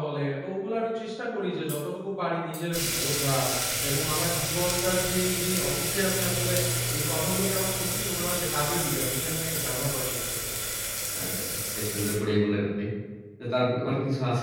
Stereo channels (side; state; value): both; identical; correlation 1.00